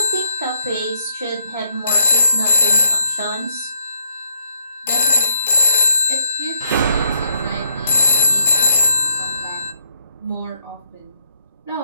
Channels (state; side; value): inverted; both; correlation -0.71